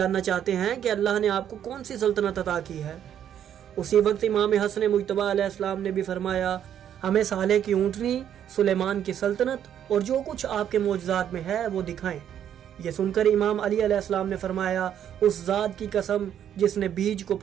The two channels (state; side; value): quieter; left; 9.8 dB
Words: چاہتے ہیں کہ اللہ نے آپ کو کون سی سلطنت عطا کی ہے۔ اسی وقت امام حسن مجتبی علیہ السلام نے بھی فرمایا، ہمیں صالح کی اونٹنی، سلیمان کی سلطنت اور جو کچھ آپ کے معجزات میں ہے وہ دکھائیں۔ یہ سن کر امام علی علیہ السلام نے فرمایا، اس ذات کی قسم جس نے بیج کو